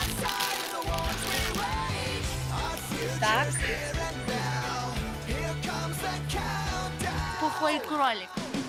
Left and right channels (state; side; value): identical; both; correlation 1.00